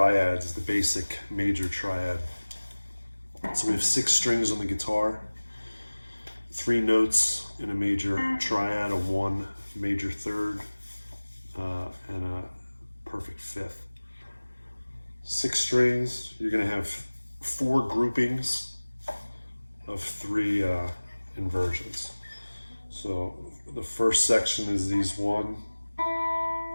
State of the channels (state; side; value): inverted; both; correlation -1.00